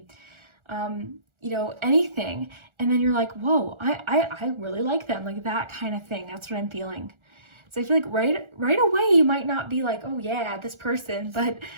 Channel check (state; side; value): late; left; 1.4 ms